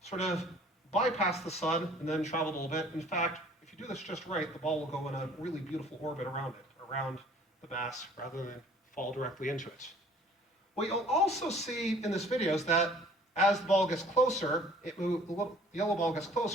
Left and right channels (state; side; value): normal; both; correlation 0.53